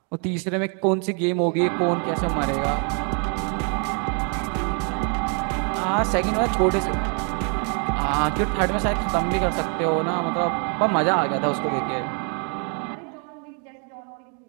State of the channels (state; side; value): quieter; left; 39.7 dB